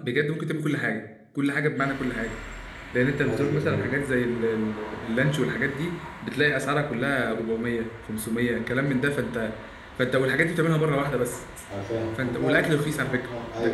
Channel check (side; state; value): both; identical; correlation 1.00